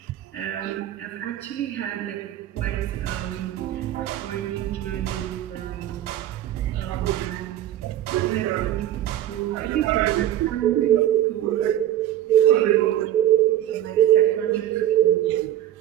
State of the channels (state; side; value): quieter; left; 12.4 dB